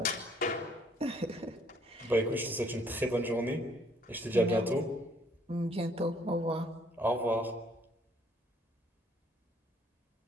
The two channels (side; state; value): both; normal; correlation 0.63